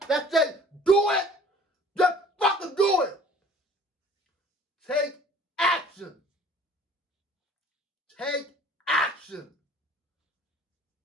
that says do it? Just fucking do it. Take action. Take action.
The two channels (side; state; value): both; normal; correlation 0.51